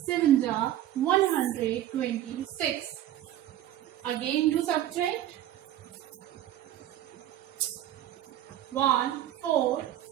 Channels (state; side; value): quieter; left; 12.7 dB